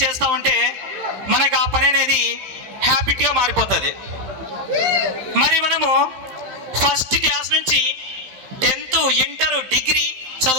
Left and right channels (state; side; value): late; left; 15 ms